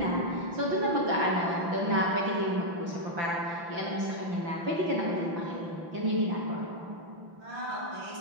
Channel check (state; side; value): late; left; 5.9 ms